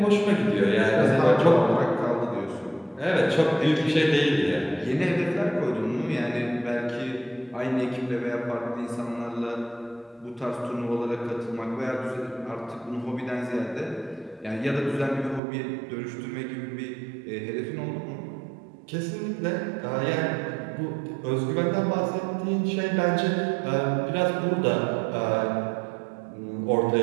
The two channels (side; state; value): left; drops out; at 15.4 s